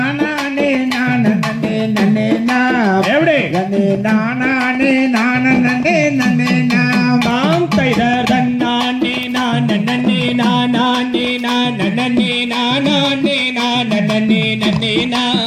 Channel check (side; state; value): both; identical; correlation 1.00